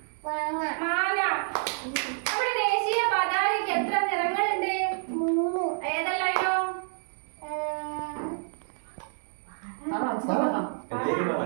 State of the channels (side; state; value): left; silent; digital silence